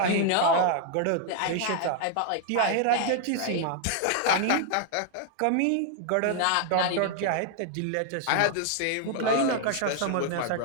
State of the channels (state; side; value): different; both; correlation 0.00